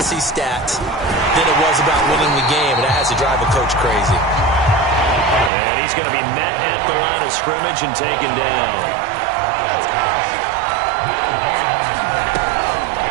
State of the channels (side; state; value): left; drops out; at 5.5 s